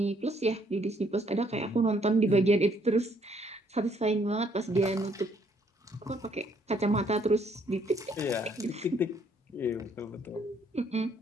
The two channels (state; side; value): normal; both; correlation 0.67